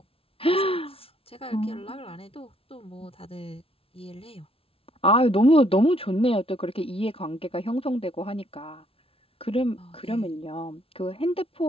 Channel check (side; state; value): right; late; 0.27 ms